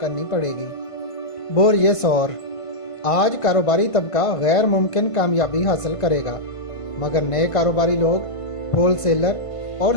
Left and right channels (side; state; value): right; late; 1.5 ms